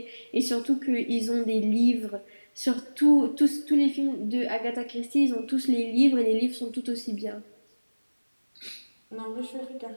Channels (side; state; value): both; inverted; correlation -1.00